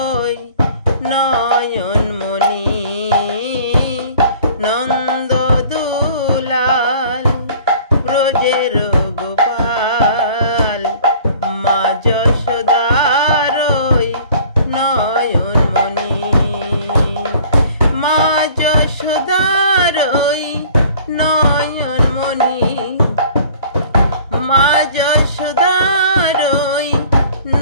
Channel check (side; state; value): both; inverted; correlation -0.50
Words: নয়নমণি নন্দদুলাল ব্রজের গোপাল মা যশোদার নয়নমণি মা যশোদার নয়নমণি মা যশোদার